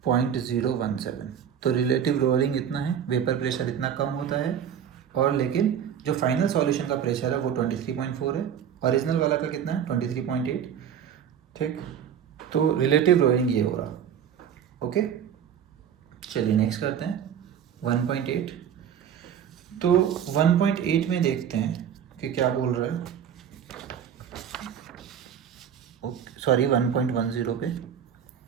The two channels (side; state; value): left; quieter; 8.7 dB